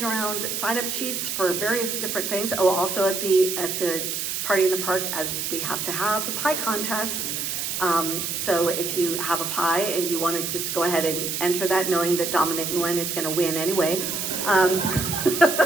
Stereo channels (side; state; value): right; noise; hiss, 2 dB below the sound